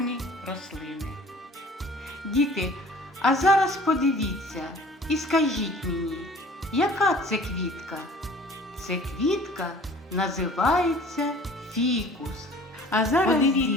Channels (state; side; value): normal; both; correlation 0.48